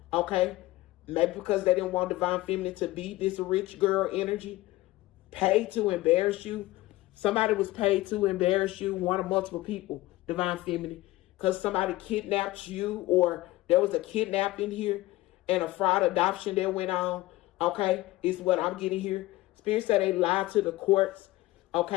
Okay. Maybe because they didn't want divine feminine to be this rich girl energy. Paid to embarrass you. Somebody was paid to embarrass you, one or multiple people, divine feminine, because somebody kidnapped you, or there was a kidnapping here and a fraud adoption that went on. Okay, is what I'm getting here. Spirit said they lied to the courts.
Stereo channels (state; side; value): quieter; right; 18.2 dB